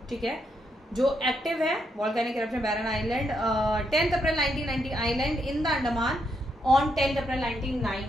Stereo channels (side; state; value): both; normal; correlation 0.79